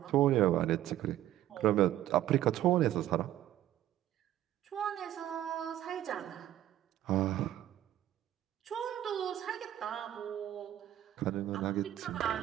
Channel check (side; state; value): left; quieter; 12.8 dB